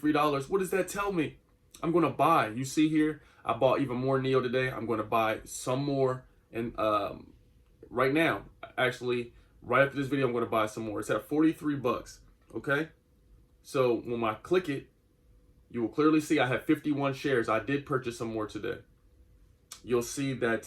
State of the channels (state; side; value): identical; both; correlation 1.00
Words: what does that tell me? I'm going to buy. You see here, I bought even more NEO today. I'm going to buy some more. And right now, actually, right after this video, I'm going to buy some more. It's at 43 bucks. Okay. So when I click it, you will clearly see I have 51 shares. I did purchase some more today. You'll see that